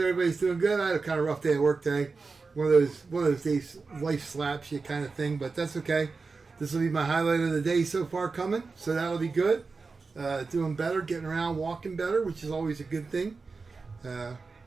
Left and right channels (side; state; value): left; quieter; 4.3 dB